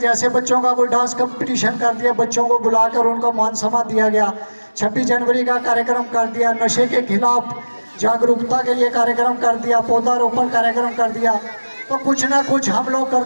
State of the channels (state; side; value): inverted; both; correlation -1.00